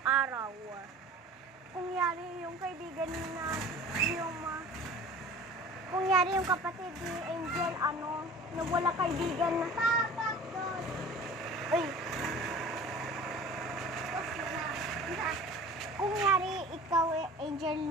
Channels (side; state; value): both; normal; correlation 0.42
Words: araw, kung yari yung kaibigan na kung yari yung kapatid ni Angel, nawala kaibigan na. Uy. Kung yari ikaw,